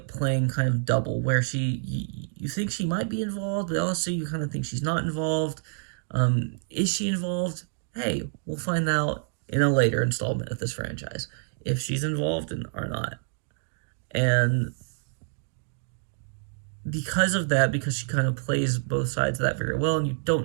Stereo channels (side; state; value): left; silent; digital silence